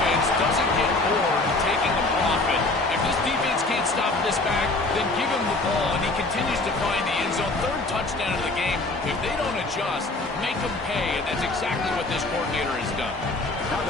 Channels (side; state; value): right; quieter; 3.1 dB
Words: doesn't get bored taking the profit. If this defense can't stop this back, then give him the ball, and he continues to find the end zone. 3rd touchdown of the game. If they don't adjust, make them pay, and that's exactly what this coordinator has done. Now